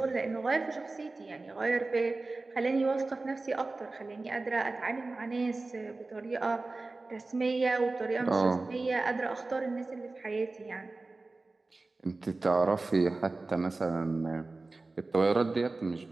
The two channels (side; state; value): left; quieter; 3.4 dB